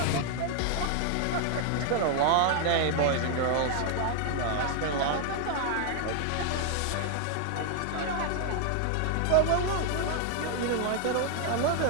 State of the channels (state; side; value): different; both; correlation 0.00